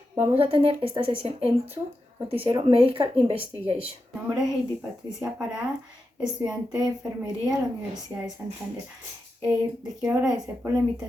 vamos a tener esta sesión en su noticiero Medical Investigation. Mi nombre es Heidi Patricia Parada, estudiante de enfermería de la Universidad de Santander. Les quiero agradecer por la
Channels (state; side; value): normal; both; correlation 0.89